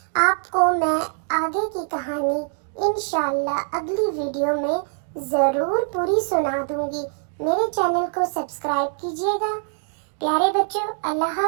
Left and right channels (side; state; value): left; silent; 60 dB below the other